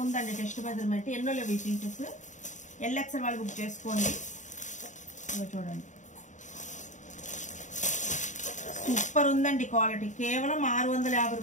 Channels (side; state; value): right; late; 0.36 ms